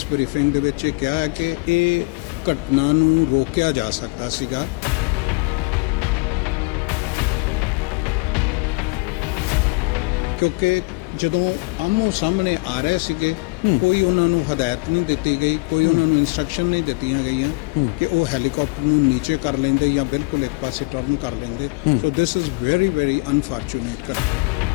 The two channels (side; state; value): right; quieter; 27.1 dB